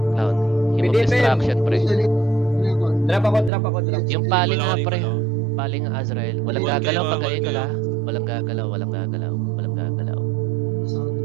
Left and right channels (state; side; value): drops out; left; at 3.5 s